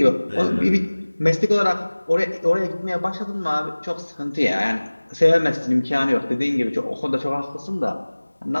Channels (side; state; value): both; inverted; correlation -1.00